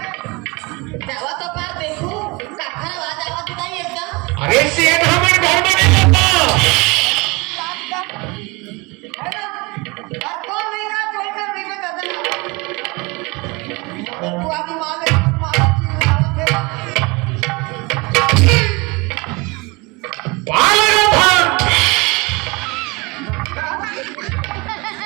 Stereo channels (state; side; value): quieter; left; 26.1 dB